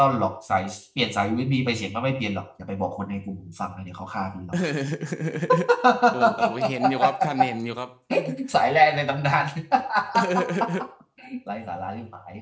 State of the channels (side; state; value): both; identical; correlation 1.00